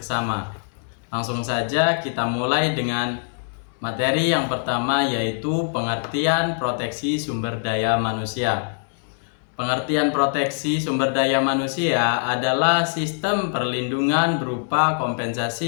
Langsung saja kita mulai dengan materi yang pertama, yaitu pengertian proteksi sumber daya manusia. Pengertian proteksi sumber daya manusia adalah sistem perlindungan berupa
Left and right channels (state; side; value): silent; right; digital silence